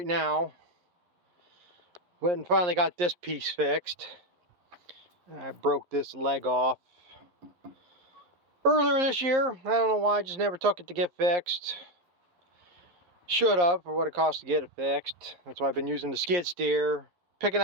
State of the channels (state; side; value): late; left; 11 ms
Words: now. Went and finally got this piece fixed. I broke this leg off earlier this year. I don't know why, I just never took it to get fixed. Should have, for what it cost to get it fixed. That's why I've been using the skid steer, picking